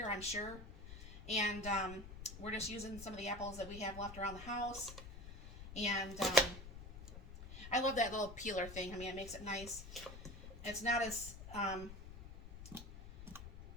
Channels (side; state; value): left; noise; rumble, 12 dB below the sound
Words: I'm sure. And we're just using some of the apples that we have left around the house. And I love that little peeler thing. I mean, it makes it nice. It's not as Yeah,